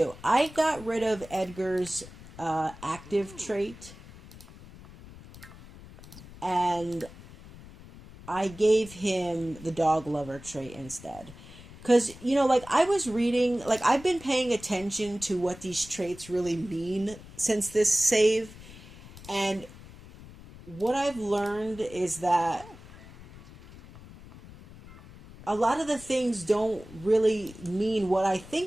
I got rid of Edgar's active trait, and I gave him the dog lover trait instead. Because, like, I was reading, like, I've been paying attention to what these traits really mean since this save, and what I've learned is that a lot of the things don't really mean what I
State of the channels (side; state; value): left; noise; rumble, 18 dB below the sound